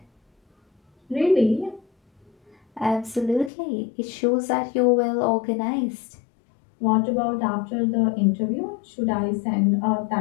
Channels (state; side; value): drops out; right; at 3.5 s